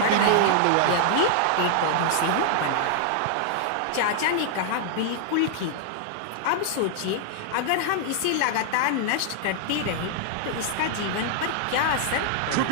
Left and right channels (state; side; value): different; both; correlation -0.01